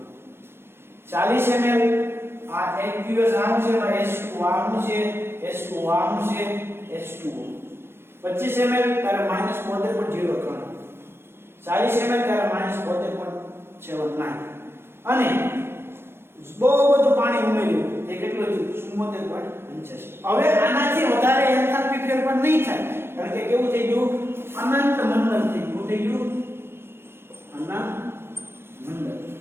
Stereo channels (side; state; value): left; late; 0.12 ms